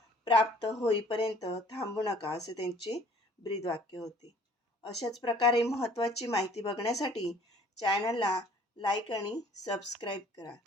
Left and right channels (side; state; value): both; normal; correlation 0.54